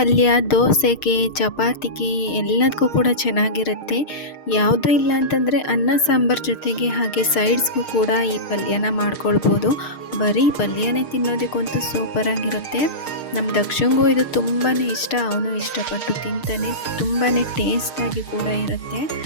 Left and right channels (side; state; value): right; late; 6.5 ms